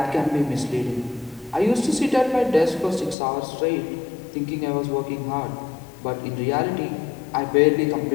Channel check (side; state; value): right; drops out; at 3.2 s